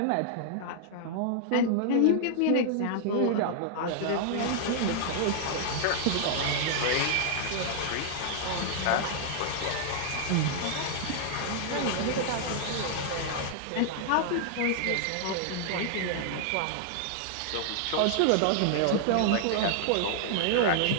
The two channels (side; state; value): both; different; correlation 0.00